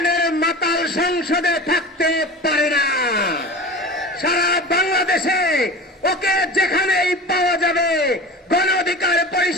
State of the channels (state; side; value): normal; both; correlation 0.34